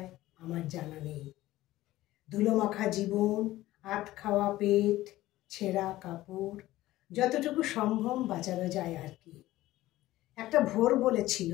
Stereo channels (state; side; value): quieter; right; 16.2 dB